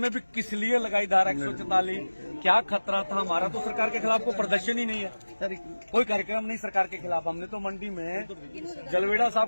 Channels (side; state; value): both; inverted; correlation -1.00